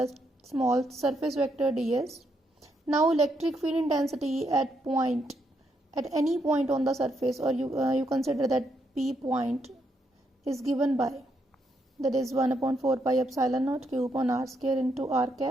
small surface vector ds. Now electric field intensity at any point on the surface, or you consider that P point is given by, that is 1 upon 4 pi epsilon naught Q upon r square into r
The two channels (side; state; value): both; normal; correlation 0.78